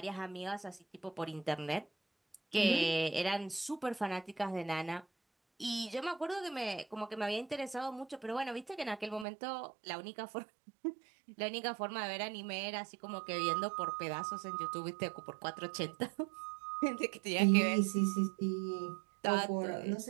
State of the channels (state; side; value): drops out; left; at 9.2 s